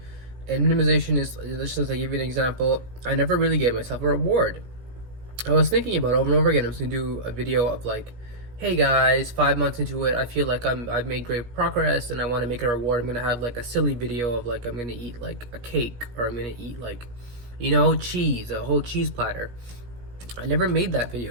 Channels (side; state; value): left; late; 17 ms